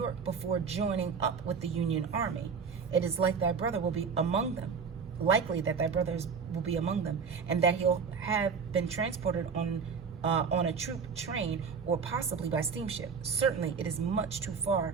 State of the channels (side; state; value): left; quieter; 5.8 dB